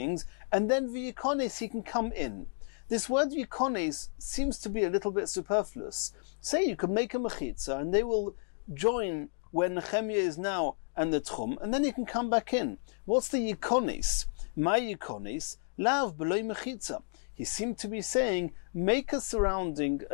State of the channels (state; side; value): silent; right; digital silence